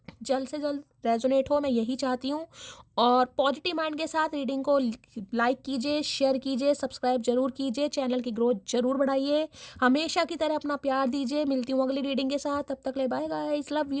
जल्द से जल्द रेजोनेट हो, मैं यही चाहती हूँ। और पॉजिटिव माइंड के साथ रीडिंग को लाइक कीजिए, शेयर कीजिए, सब्सक्राइब जरूर कीजिए, चैनल की ग्रोथ जरूर बढ़ाइए। हमेशा की तरह अपना प्यार दीजिए। मिलती हूँ अगली रीडिंग के साथ। तब तक ले bye guys, love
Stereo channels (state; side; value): identical; both; correlation 1.00